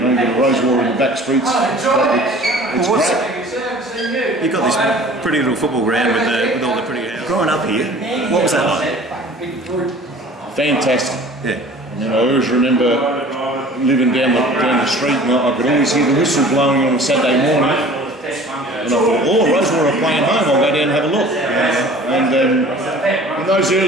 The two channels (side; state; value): both; normal; correlation 0.46